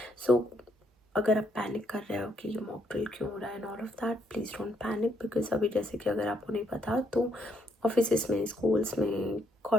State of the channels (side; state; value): both; normal; correlation 0.73